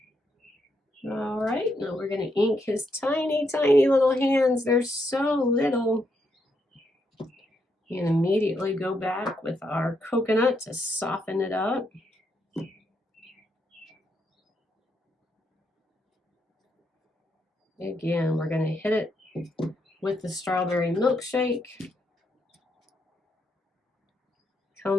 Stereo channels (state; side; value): normal; both; correlation 0.78